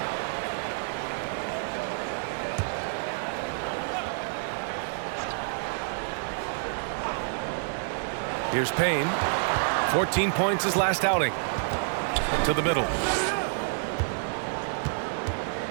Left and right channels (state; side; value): silent; left; digital silence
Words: Here's Payne. 14 points his last outing. To the middle.